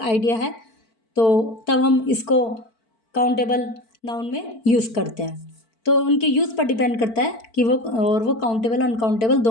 आइडिया है, तो तब हम इसको काउंटेबल नाउन में यूज़ करते हैं। तो उनके यूज़ पर डिपेंड करता है कि वो काउंटेबल अनकाउंटेबल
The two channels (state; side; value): late; right; 4.5 ms